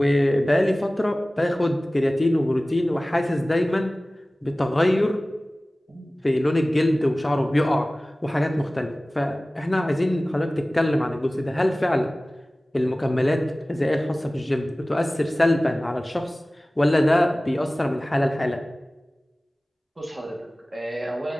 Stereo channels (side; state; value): both; normal; correlation 0.98